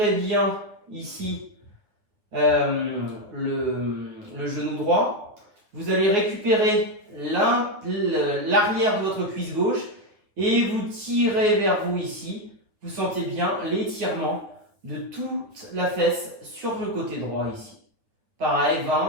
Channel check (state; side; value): late; left; 9.5 ms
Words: bien ici le genou droit. Vous allez récupérer l'arrière de votre cuisse gauche et vous tirez vers vous ici. Vous sentez bien l'étirement de toute la fesse sur le côté droit ici. Pareil,